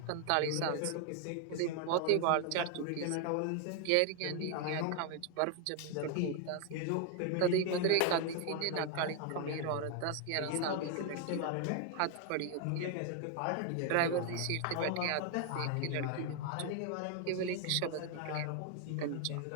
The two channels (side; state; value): both; different; correlation 0.00